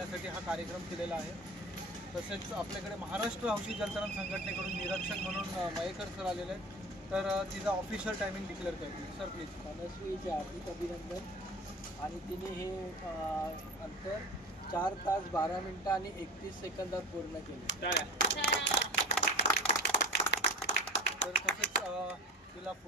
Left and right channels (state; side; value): normal; both; correlation 0.33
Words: हा कार्यक्रम केलेला आहे। तसेच आपल्याकडे महाराष्ट्र हौशी जलतरण संघटनेकडून निरीक्षक म्हणून मयेकर सर आलेले आहेत, तर तिचा ऑफिशियल टायमिंग डिक्लेअर करतील। Sir please. मनस्वीचे हार्दिक अभिनंदन। आणि तिने हे अंतर 4 तास 12 मिनिटं आणि 31 सेकंदात पूर्ण केले। तर तसेच तिला